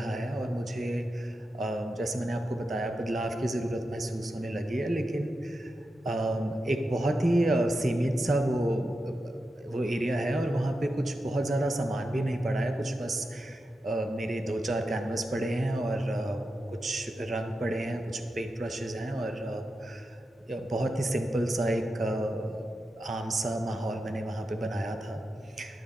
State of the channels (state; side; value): normal; both; correlation 0.89